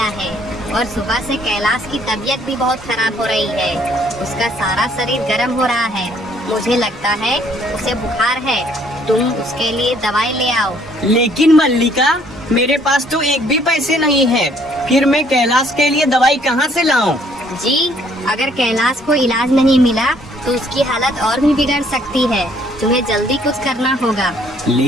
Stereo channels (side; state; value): both; normal; correlation 0.63